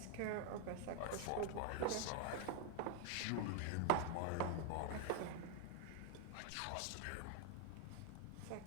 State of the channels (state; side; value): different; both; correlation 0.01